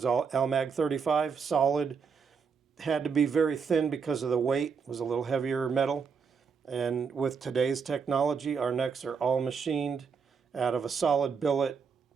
all Almag 35, solid, had to be very thin because of the weight, was a little heavier metal. And with today's technology, our necks are all machined out of a solid billet,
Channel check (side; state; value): left; quieter; 5.8 dB